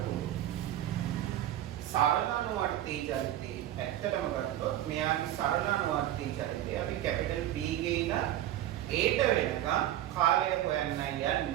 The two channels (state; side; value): quieter; left; 12.9 dB